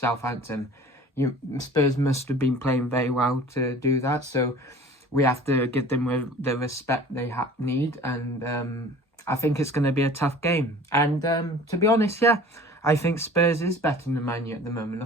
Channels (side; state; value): both; normal; correlation 0.45